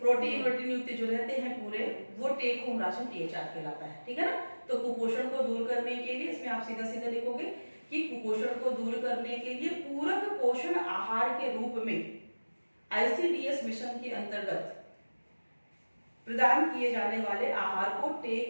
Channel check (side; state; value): both; inverted; correlation -1.00